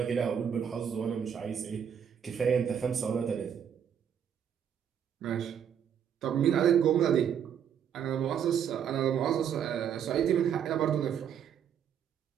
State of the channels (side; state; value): left; quieter; 8.5 dB